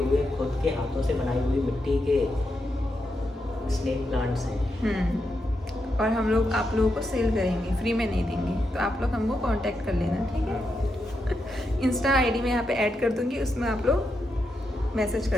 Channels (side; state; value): both; normal; correlation 0.84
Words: खुद के हाथों से बनाई हुई मिट्टी के स्नेक प्लांट्स हैं। और हम लोग आप लोगों को सेल करेंगे, फ्री में नहीं देंगे। तो आप लोग हमको कांटेक्ट कर लेना, ठीक है। इंस्टा आईडी में यहाँ पे ऐड कर दूँगी, उसमें आप लोग मैसेज